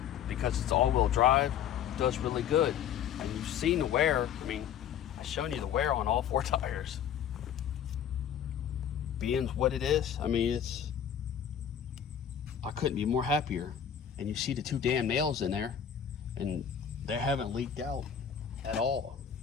because it's all-wheel drive, does really good. And you've seen the wear. I mean, I've shown you the wear on all 4 tires. Being what it is, I mean, I couldn't be more happier. And you see the 2 damn nails in there, and they haven't leaked out at all.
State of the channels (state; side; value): quieter; right; 8.7 dB